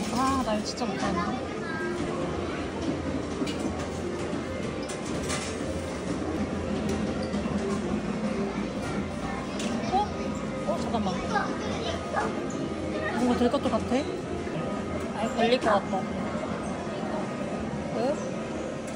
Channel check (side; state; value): both; identical; correlation 1.00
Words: 아, 나 이거 진짜 못하는데. 잠깐만. 뭔가 될 것도 같아? 아니, 걸릴 것 같다. 왜?